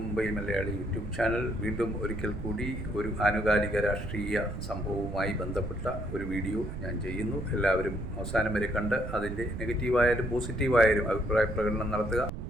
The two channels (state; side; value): noise; right; rumble, 7 dB below the sound